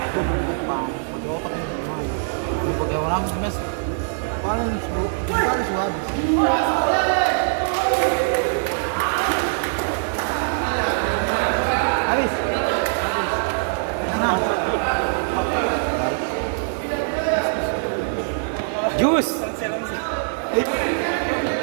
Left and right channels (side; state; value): left; silent; digital silence